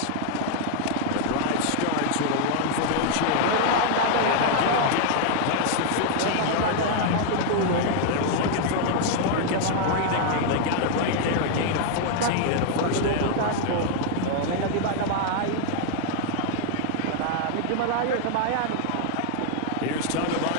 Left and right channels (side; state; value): both; different; correlation 0.00